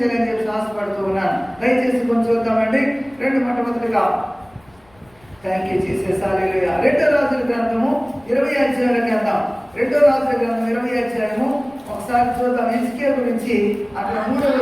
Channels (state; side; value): noise; left; rumble, 30 dB below the sound